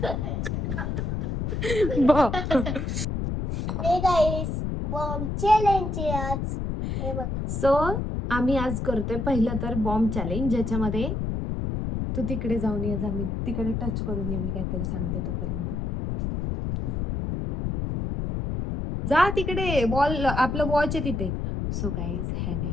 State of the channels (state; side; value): noise; left; rumble, 2 dB below the sound